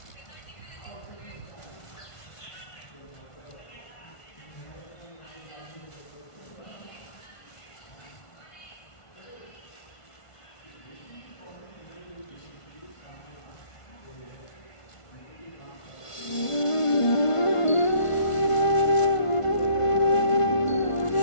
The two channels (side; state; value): right; late; 1.5 ms